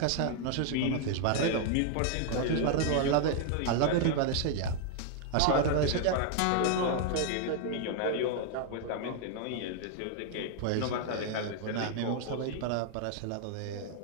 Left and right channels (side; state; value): both; different; correlation 0.00